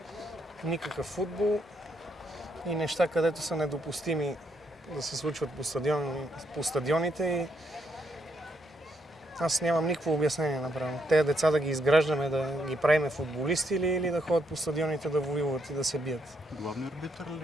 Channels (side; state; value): both; normal; correlation 0.76